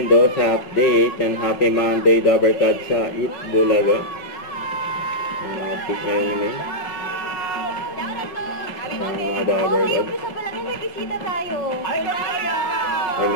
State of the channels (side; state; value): right; late; 5.4 ms